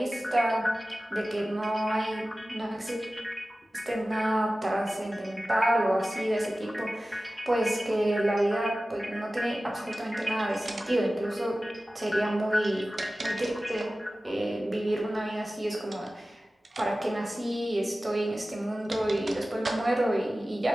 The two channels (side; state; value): both; normal; correlation 0.96